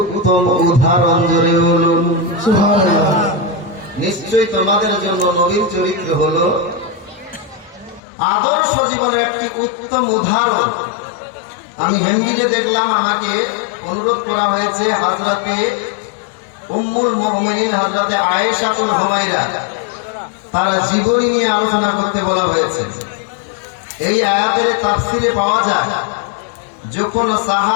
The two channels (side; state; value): right; drops out; at 8.0 s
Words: উদাহরণ। জোরে বলুন সুবহানাল্লাহ। নিশ্চয়ই তোমাদের জন্য নবীর চরিত্র হলো আদর্শ জীবনের একটি উত্তম উদাহরণ। আমি হেন্ডিতে দেখলাম, আমাকে অনুরোধ করা হয়েছে হযরতে উম্মুল মুমিনিন হযরতে আয়েশাতুল হুমায়রা তার জীবনী নিয়ে আলোচনা করতে বলা হয়েছে। এই আয়াতের তাফসিরে পাওয়া যায়, যখন